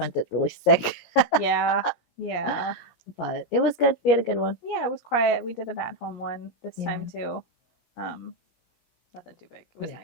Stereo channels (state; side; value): late; right; 17 ms